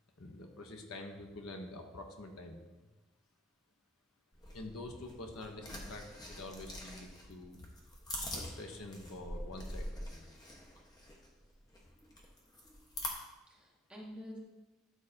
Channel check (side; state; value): both; normal; correlation 0.53